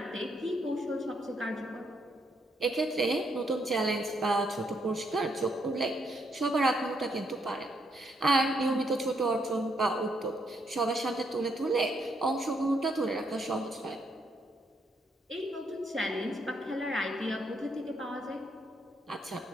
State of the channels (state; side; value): normal; both; correlation 0.75